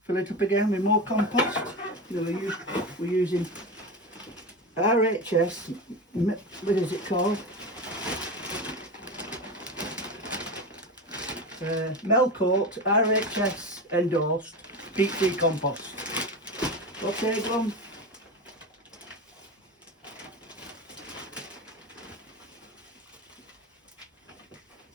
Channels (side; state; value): both; normal; correlation 0.22